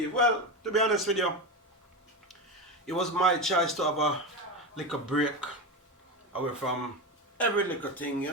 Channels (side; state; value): both; normal; correlation 0.18